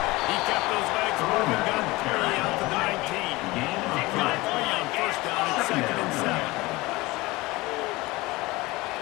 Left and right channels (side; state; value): right; quieter; 21.3 dB